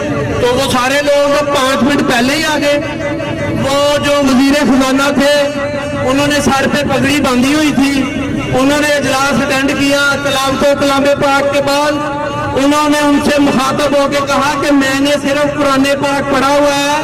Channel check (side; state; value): both; identical; correlation 1.00